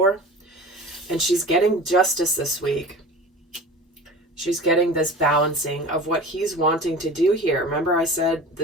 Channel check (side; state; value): both; normal; correlation 0.37